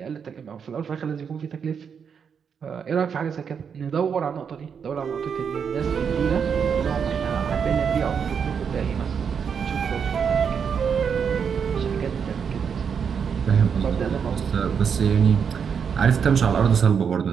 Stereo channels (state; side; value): quieter; left; 6.9 dB